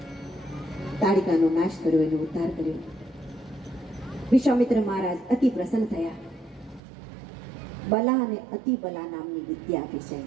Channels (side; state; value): left; drops out; at 6.8 s